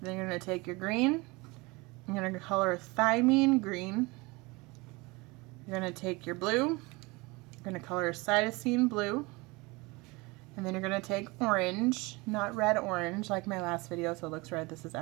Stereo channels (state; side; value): quieter; left; 24.9 dB